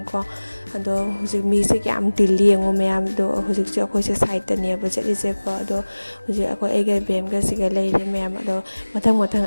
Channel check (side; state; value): both; inverted; correlation -1.00